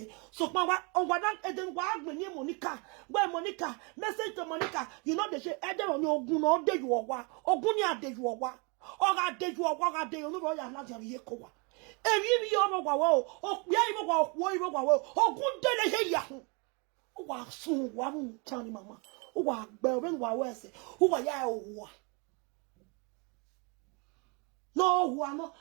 Sọ̀pọ̀ wa ọ̀gbọ̀n náà ẹ̀dẹ̀ wà á gbé ní Monica. Gbé Monica message to Monica. You know they say ẹ̀dẹ̀ wọn ní ogun náà ọ̀dẹ̀ yù ọ̀wá. Ogun ní àdẹ̀ yù ọ̀wá. Ọ̀gá àdẹ̀ yù ọ̀wá ọ̀gá àdẹ̀ yù olúbọ̀ yà láti àríyé kó wa. Èmi mi yọ ọmọ wà wọ́ o. Òpìá ìmọ̀ wà òkú ìmọ̀ wà wọ́ o. Ogun délé ṣe yàhùn. Ó wà sùn wà mú tán ni màmá. Who are bearing what was who are ya? No, who are not.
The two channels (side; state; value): left; quieter; 32.2 dB